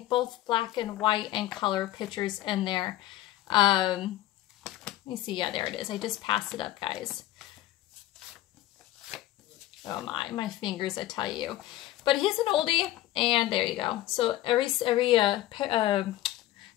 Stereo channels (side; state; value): right; quieter; 14.9 dB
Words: both black and white and color pictures in there. Let me see. Yeah, there it is. I just passed it up, guys. Oh my fingers, I tell you. But he's an oldie. And there you go. So every